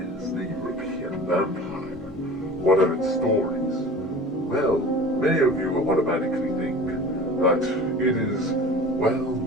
the European vampire? What are its stories? Well, many of you automatically think that it is, well,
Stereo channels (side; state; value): both; normal; correlation 0.39